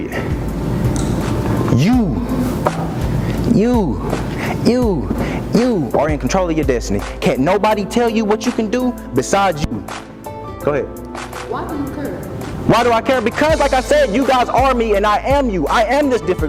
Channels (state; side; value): identical; both; correlation 1.00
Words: You are in control of your destiny. Can't nobody tell you what you can do besides you. Go ahead. Why do you care? Why do I care? Because like I said, you guys are me and I am you. I am this